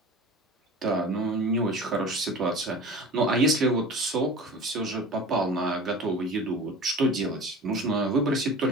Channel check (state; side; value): normal; both; correlation 0.37